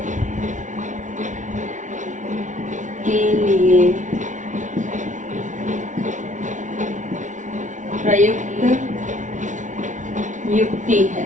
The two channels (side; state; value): left; late; 0.36 ms